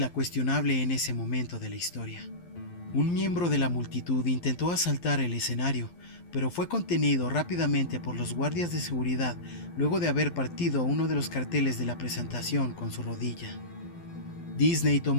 cuestionable en ese momento de la historia. Un miembro de la multitud intentó asaltar el escenario, pero fue contenido rápidamente por los guardias de seguridad luego de haber partido uno de los carteles de la presentación con su rodilla. Disney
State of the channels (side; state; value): right; late; 12 ms